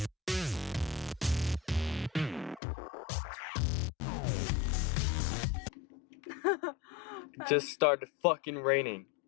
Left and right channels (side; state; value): right; drops out; at 2.6 s